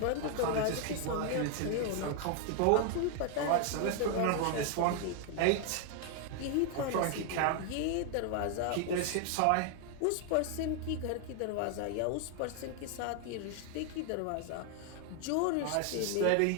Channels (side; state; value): both; different; correlation 0.01